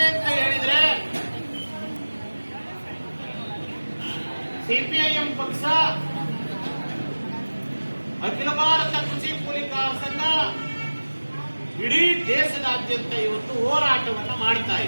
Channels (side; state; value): both; inverted; correlation -1.00